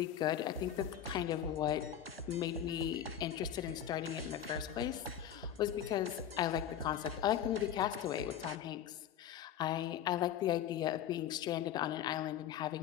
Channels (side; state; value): right; quieter; 10.0 dB